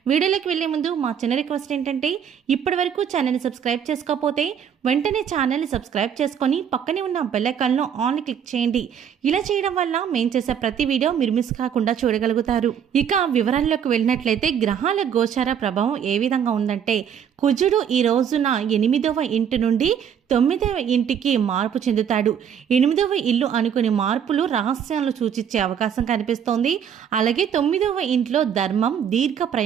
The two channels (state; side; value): quieter; left; 8.3 dB